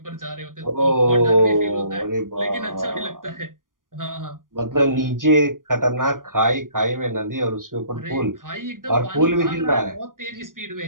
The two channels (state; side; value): late; left; 0.90 ms